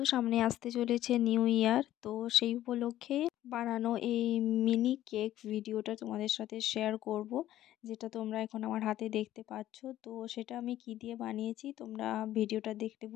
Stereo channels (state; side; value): quieter; right; 13.4 dB